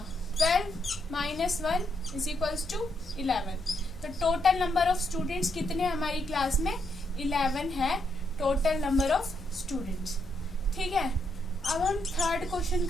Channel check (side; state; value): both; normal; correlation 0.78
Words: 12 -1 इज इक्वल्स टू 11। तो टोटल नंबर ऑफ स्टूडेंट्स कितने हमारी क्लास में 11 है टोटल नंबर ऑफ स्टूडेंट्स। ठीक है, अब हम थर्ड क्वेश्चन